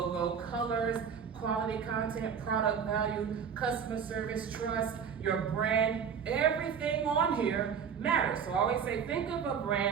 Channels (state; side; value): quieter; left; 7.1 dB